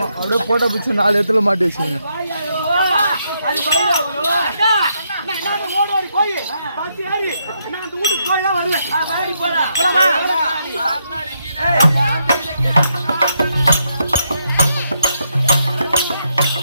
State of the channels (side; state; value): both; inverted; correlation -0.79